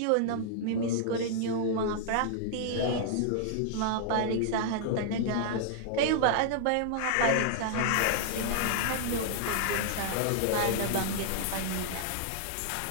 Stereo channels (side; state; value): both; different; correlation -0.01